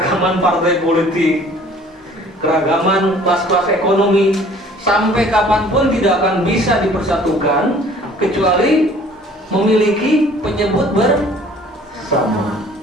partai politik, keragaman kelas-kelas ekonomi, sampai kapanpun tidak akan bisa dipersatukan kecuali memiliki penyebut bersama.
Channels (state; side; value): normal; both; correlation 0.53